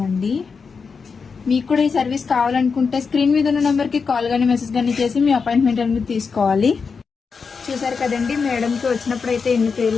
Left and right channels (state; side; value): quieter; right; 5.3 dB